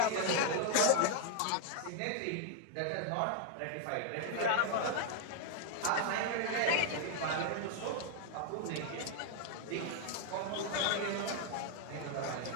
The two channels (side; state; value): both; different; correlation 0.00